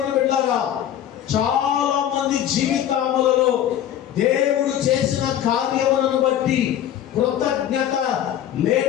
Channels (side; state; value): right; quieter; 10.8 dB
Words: బిడ్డలారా, చాలా మంది జీవితములలో దేవుడు చేసిన కార్యములను బట్టి కృతజ్ఞత